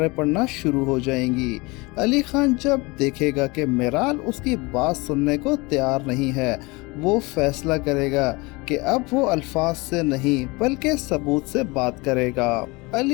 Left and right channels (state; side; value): quieter; right; 25.0 dB